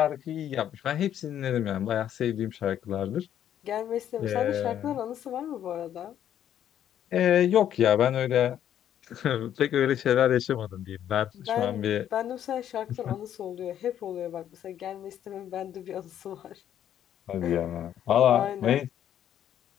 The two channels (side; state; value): right; quieter; 10.4 dB